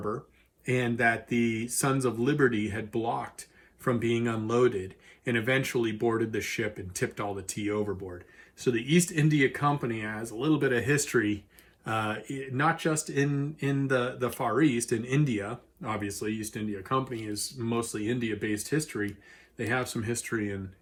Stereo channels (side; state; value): both; identical; correlation 1.00